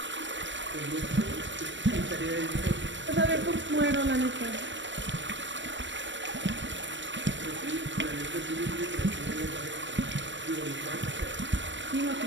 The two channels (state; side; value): late; left; 0.54 ms